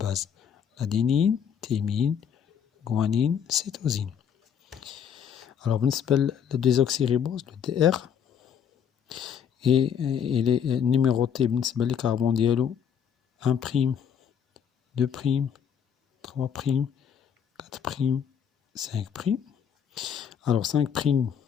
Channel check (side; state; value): right; quieter; 8.0 dB